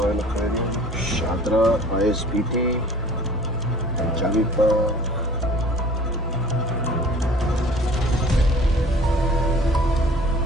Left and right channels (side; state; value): both; normal; correlation 0.48